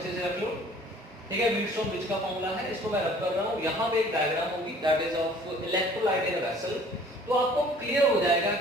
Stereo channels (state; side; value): normal; both; correlation 0.52